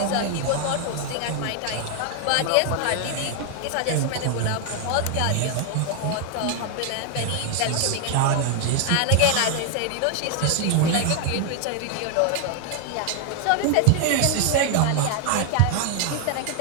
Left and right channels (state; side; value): different; both; correlation 0.00